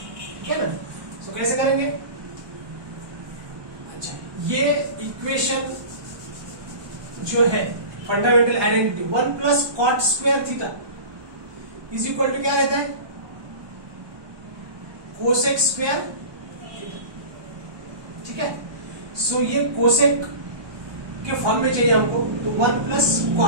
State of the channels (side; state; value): left; late; 1.2 ms